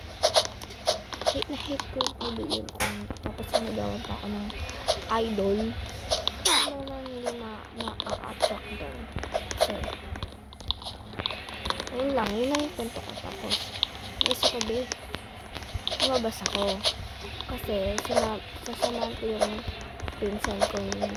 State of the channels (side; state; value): both; identical; correlation 1.00